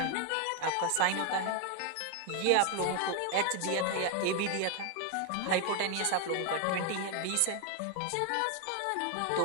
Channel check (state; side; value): different; both; correlation 0.01